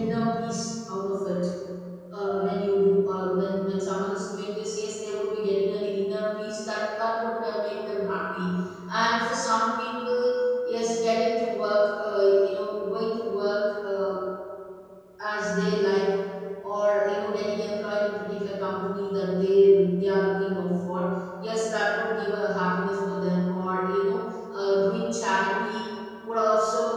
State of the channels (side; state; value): both; identical; correlation 1.00